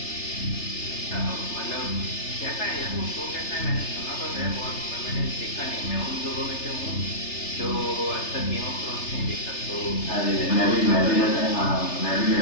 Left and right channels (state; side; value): late; right; 3.3 ms